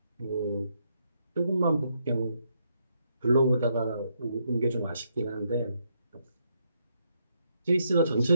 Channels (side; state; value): both; inverted; correlation -0.77